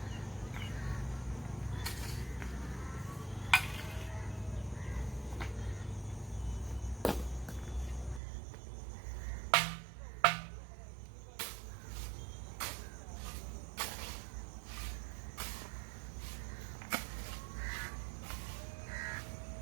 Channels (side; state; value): left; drops out; at 8.2 s